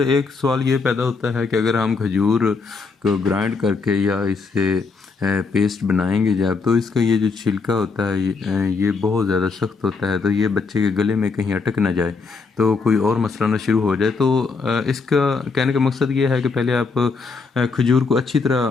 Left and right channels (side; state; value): right; quieter; 4.6 dB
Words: سوال یہ پیدا ہوتا ہے کہ اگر ہم کھجور کو گرائنڈ کر کے یا اس سے پیسٹ بنائیں گے جب، تو اس کا یہ جو چھلکا ہوتا ہے یہ بہت زیادہ سخت ہوتا ہے، تو یہ بچے کے گلے میں کہیں اٹک نہ جائے تو کوئی اور مسئلہ نہ شروع ہو جائے۔ تو اس کا کہنے کا مقصد یہ ہے کہ پہلے آپ کھجور کو اچھی طرح